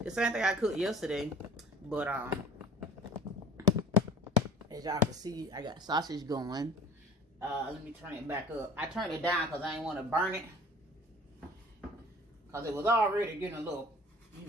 The same thing I cooked yesterday, but as y'all can see, I got sausage going. Let me turn it back up. I turned it down because I didn't want to burn it. Because it was already getting a little,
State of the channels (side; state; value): both; normal; correlation 0.45